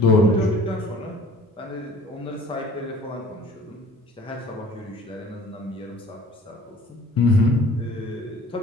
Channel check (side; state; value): both; normal; correlation 0.49